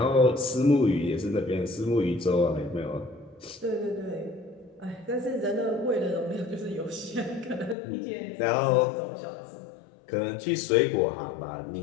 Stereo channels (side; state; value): right; drops out; at 7.8 s